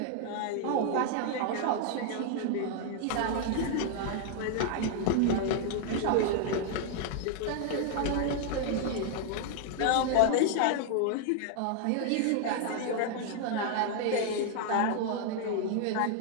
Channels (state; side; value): different; both; correlation 0.00